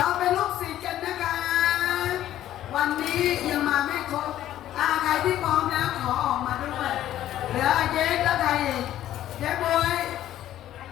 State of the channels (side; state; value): right; quieter; 12.6 dB